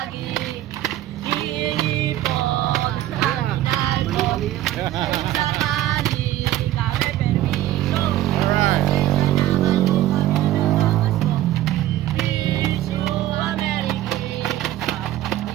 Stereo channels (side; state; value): left; quieter; 14.0 dB